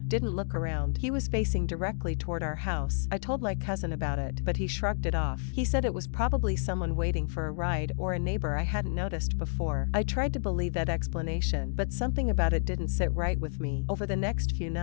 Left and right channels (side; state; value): right; silent; digital silence